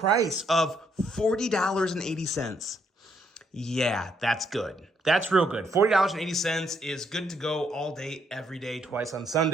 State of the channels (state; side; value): normal; both; correlation 0.73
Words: of $40.80. Yeah, that's good. That's real good. $40.80 is good to go all day, every day, twice on